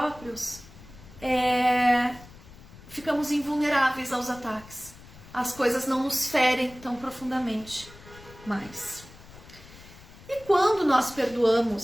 ficamos invulneráveis aos ataques, as coisas não nos ferem tão profundamente mais. E quando nós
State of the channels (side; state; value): left; noise; rumble, 20 dB below the sound